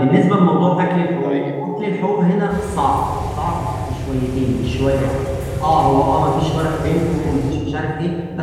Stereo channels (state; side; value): identical; both; correlation 1.00